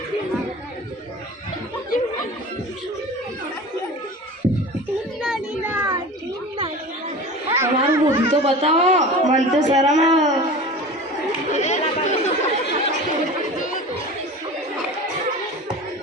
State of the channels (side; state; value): both; normal; correlation 0.35